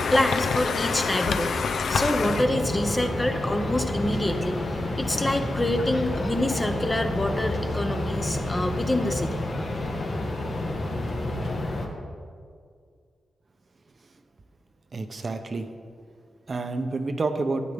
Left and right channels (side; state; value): both; normal; correlation 0.90